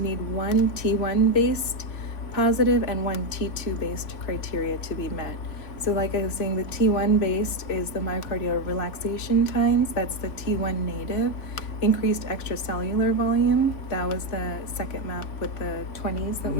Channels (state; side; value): late; right; 3.8 ms